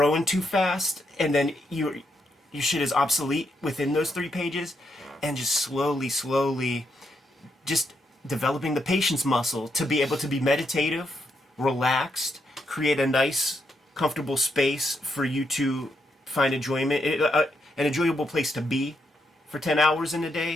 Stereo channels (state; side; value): normal; both; correlation 0.79